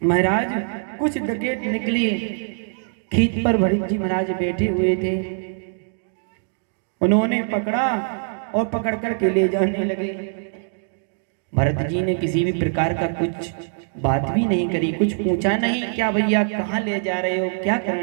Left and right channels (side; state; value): left; silent; digital silence